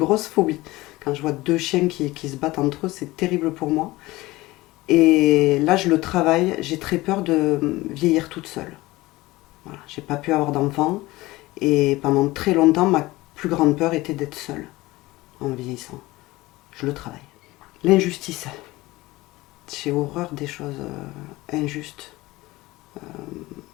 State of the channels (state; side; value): quieter; right; 19.5 dB